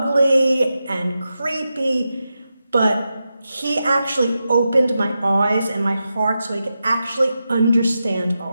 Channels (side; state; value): both; inverted; correlation -0.89